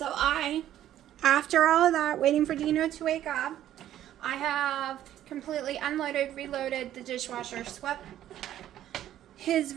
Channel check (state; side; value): quieter; left; 12.1 dB